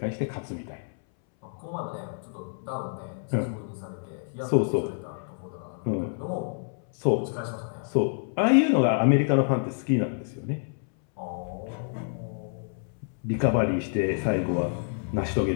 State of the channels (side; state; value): right; silent; 59 dB below the other